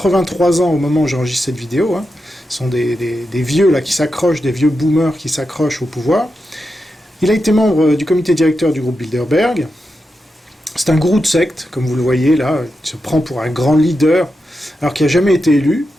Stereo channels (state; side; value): normal; both; correlation 0.88